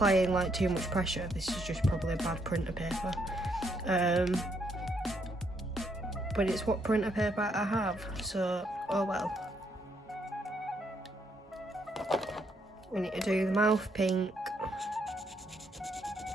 like too much pressure. This is just probably a bad printer paper, but it's what printer paper I have, so oh well. We need to do the mouth pink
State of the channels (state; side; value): normal; both; correlation 0.73